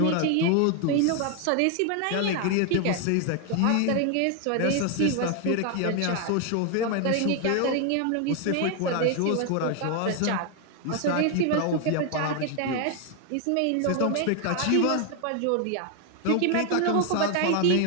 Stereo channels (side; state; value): both; different; correlation 0.01